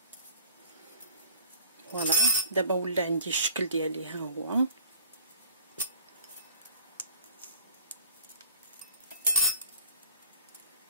فوالا دابا ولا عندي الشكل ديالي ها هو.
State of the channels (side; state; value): both; inverted; correlation -0.48